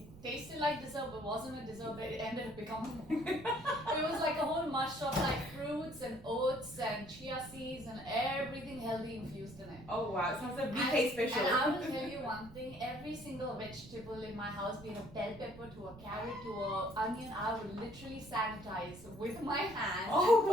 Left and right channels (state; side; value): noise; right; rumble, 18 dB below the sound